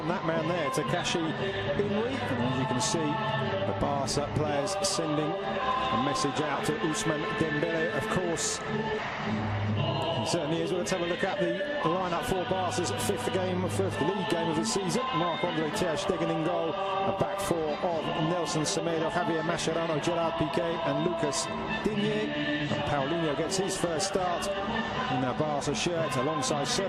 that man there, Takashi Inui. And as you can see, the Barca players sending a message out to Ousmane Dembele, of course. It certainly is. Well, let's have a look at the lineup for Barca's fifth league game of the season. Marc-Andre ter Stegen in goal. A back 4 of Nelson Semedo, Javier Mascherano, Gerard Piqué and Lucas Digne. And Paulinho gets his first start in a Barca shirt alongside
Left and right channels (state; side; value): identical; both; correlation 1.00